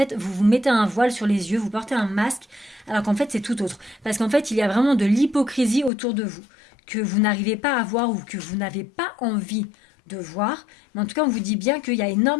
vous vous mettez un voile sur les yeux, vous portez un masque, alors qu'en fait, c'est tout autre. Parce qu'en fait, il y a vraiment de l'hypocrisie autour de vous, que vous n'arrivez pas à voir ou que vous n'avez pas envie de voir. Mais en tout cas, on vous dit bien qu'il y a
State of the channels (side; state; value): right; drops out; at 5.9 s